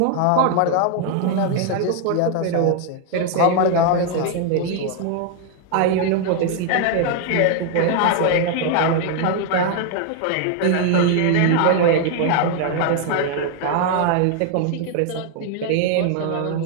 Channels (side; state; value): both; different; correlation 0.00